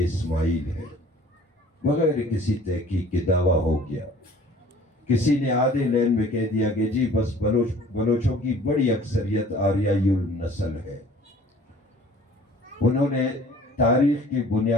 ہے, بغیر کسی تحقیق کے دعویٰ ہو گیا. کسی نے آدھے لین میں کہہ دیا کہ جی بس بلوچوں کی بڑی اکثریت آریائی النسل ہے. انہوں نے تاریخ کے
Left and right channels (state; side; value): normal; both; correlation 0.50